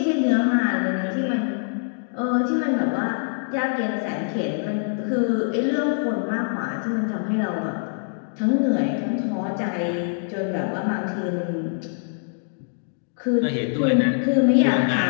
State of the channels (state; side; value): silent; right; digital silence